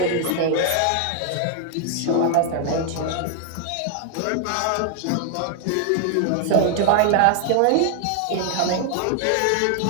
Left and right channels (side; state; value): both; different; correlation 0.00